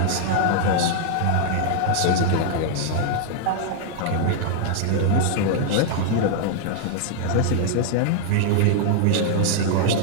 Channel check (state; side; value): different; both; correlation 0.00